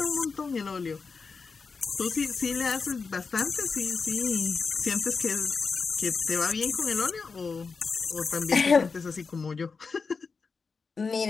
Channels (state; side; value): quieter; right; 4.9 dB